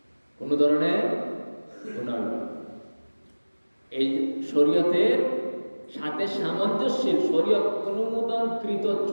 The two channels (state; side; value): inverted; both; correlation -1.00